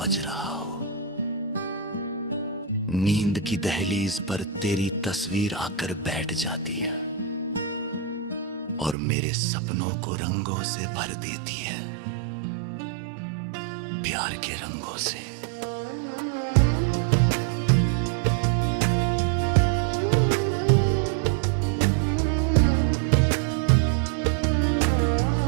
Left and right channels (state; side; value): drops out; left; at 9.0 s